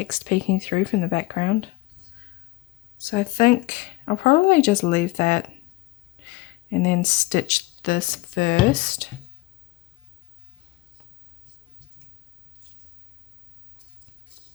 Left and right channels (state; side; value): quieter; right; 19.4 dB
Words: peeking through from the background. So I think I'll probably just leave that and then stitch this first.